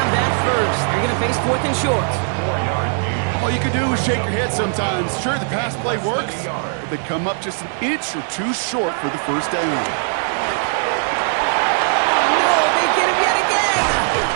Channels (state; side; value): silent; left; 59 dB below the other